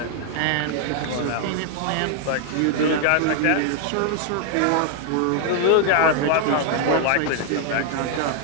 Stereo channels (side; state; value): both; different; correlation 0.00